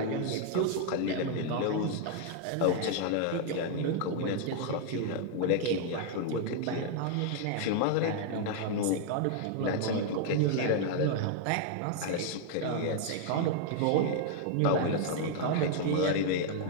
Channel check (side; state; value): both; different; correlation 0.00